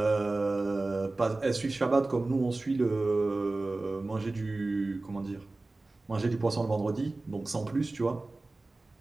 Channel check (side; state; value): left; quieter; 3.1 dB